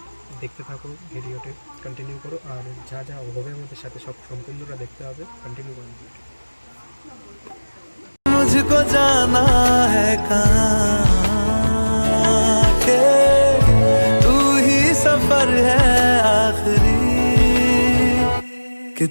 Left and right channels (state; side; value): inverted; both; correlation -1.00